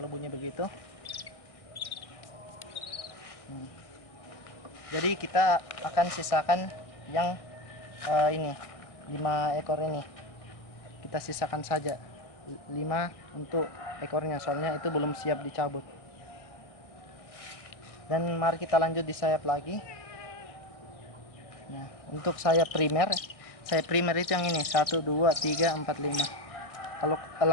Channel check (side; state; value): right; late; 1.6 ms